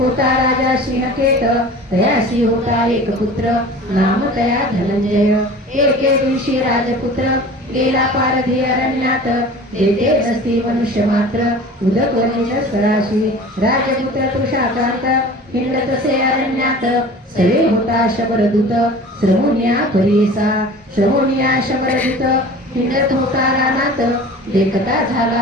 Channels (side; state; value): both; normal; correlation 0.41